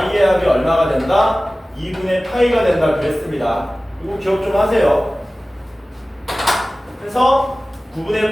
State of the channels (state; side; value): normal; both; correlation 0.97